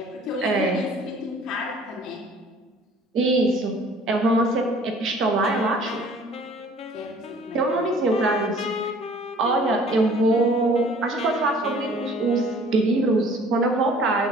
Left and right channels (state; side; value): normal; both; correlation 0.52